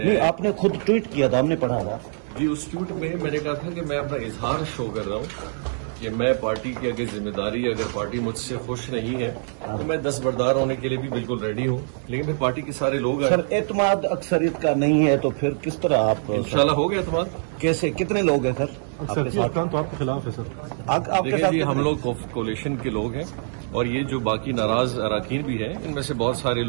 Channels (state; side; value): silent; left; digital silence